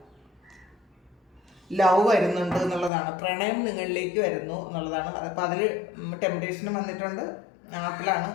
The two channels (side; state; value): right; drops out; at 2.9 s